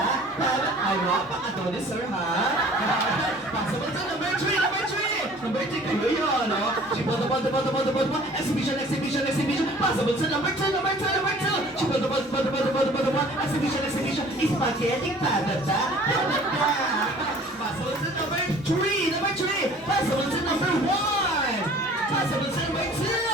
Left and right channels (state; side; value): normal; both; correlation 0.50